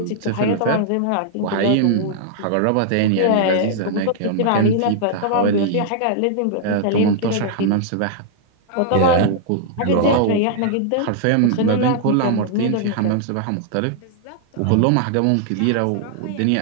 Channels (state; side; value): different; both; correlation -0.01